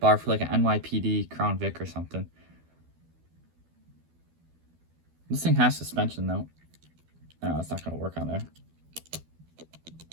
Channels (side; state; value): left; late; 12 ms